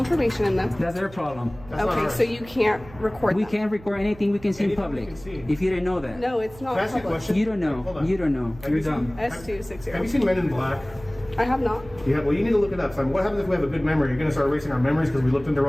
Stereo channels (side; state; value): right; noise; hum, 19 dB below the sound